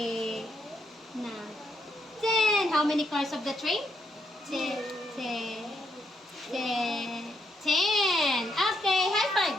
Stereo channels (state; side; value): normal; both; correlation 0.77